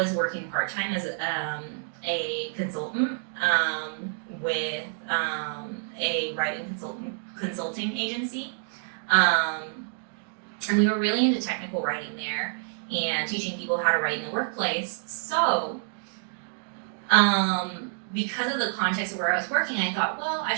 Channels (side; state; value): left; silent; digital silence